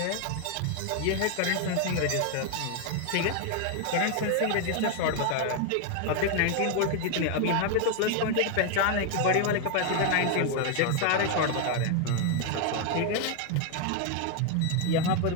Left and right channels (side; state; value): both; different; correlation 0.00